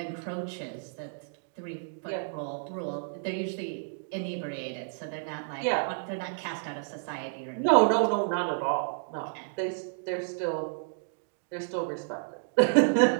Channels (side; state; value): left; silent; digital silence